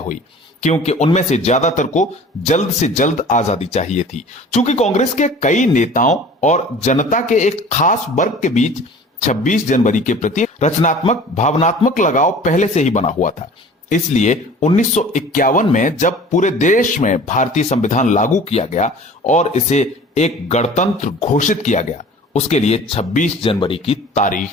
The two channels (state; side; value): normal; both; correlation 0.44